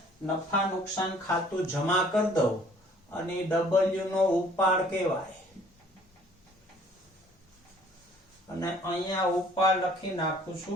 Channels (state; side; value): normal; both; correlation 0.56